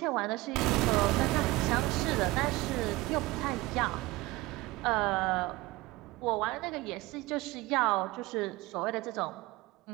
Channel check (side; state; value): left; quieter; 19.9 dB